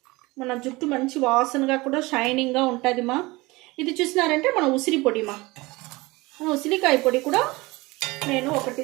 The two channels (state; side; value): quieter; left; 22.4 dB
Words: మన జుట్టు మంచి వాసనగా కూడా షైనింగ్గా ఉంటుంది మా. ఇది చూసినారంటే మన ఉసిరి పొడి మా. ఉసిరికాయ పొడి కూడా నేను 1 టీ